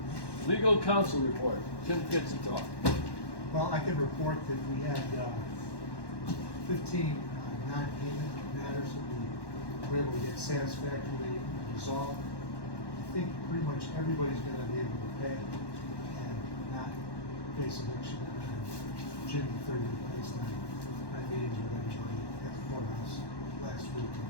Legal counsel report, Tim gets to talk. Well, I can report that we had 15 non-payment matters that we were able to get satisfactorily resolved. I think pretty much everybody's gonna be able to pay and not face eviction on June 30th based on my meetings with everybody at the courthouse last week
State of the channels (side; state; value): right; late; 1.1 ms